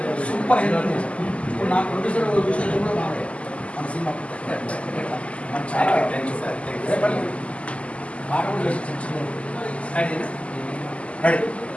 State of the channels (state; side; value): late; right; 0.061 ms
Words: సూపర్ హెల్ప్. ఇప్పుడు నా ప్రొడ్యూసర్ విషయంలో కూడా బాగా మన సినిమా మన చాలా పాట కూడా చేసి